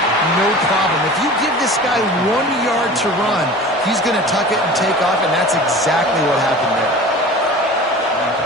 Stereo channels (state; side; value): normal; both; correlation 0.39